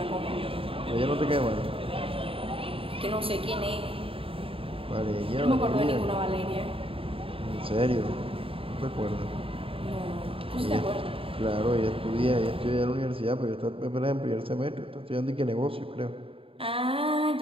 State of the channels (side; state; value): left; late; 0.27 ms